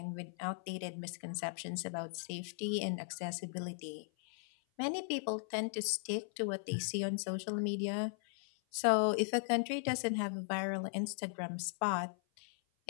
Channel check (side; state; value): right; silent; 53 dB below the other